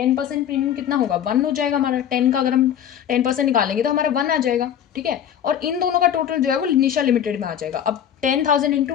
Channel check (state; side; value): quieter; right; 9.6 dB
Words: प्रीमियम कितना होगा, 1 हो जाएगा हमारा। 10 का अगर हम 10% निकालेंगे तो हमारा 1 आ जाएगा। ठीक है, और इन दोनों का टोटल जो है वो निशा लिमिटेड में आ जाएगा। अब 10,000 इंटू